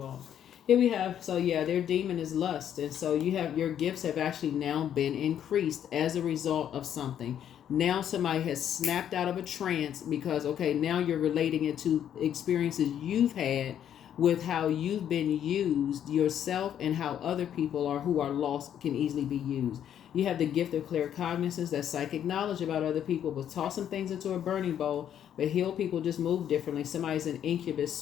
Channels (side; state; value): right; quieter; 9.8 dB